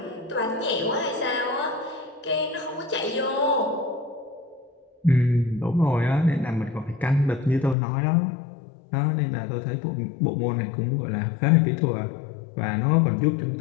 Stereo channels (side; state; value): right; drops out; at 7.8 s